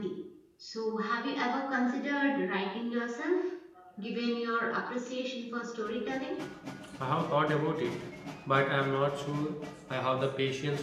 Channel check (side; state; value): both; identical; correlation 1.00